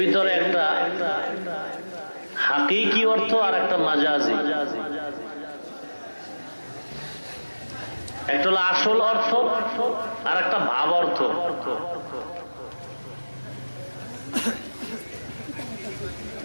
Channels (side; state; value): both; inverted; correlation -1.00